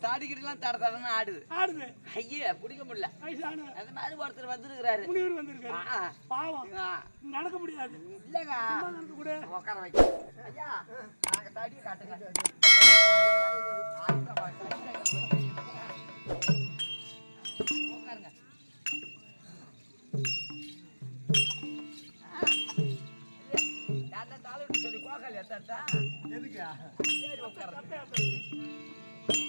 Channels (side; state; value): both; inverted; correlation -1.00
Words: தாடிக்கிட்டுலாம் தட தடன்னு ஆடுது ஐயா பிடிக்க முடியல. அந்த மாதிரி ஒருத்தர் வந்திருக்கிறாரு, பாவம் நடக்க முடியாது. இல்லங்க உட்கார வைக்க ஐயா, நாங்க தடியை காட்டுங்க. உட்காருங்க. சொல்லி கோகால் எத்தா எதுக்கு